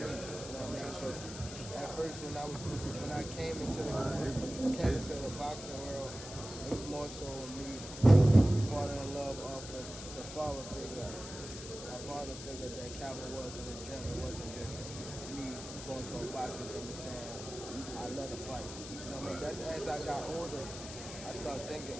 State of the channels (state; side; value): noise; left; hiss, 11 dB below the sound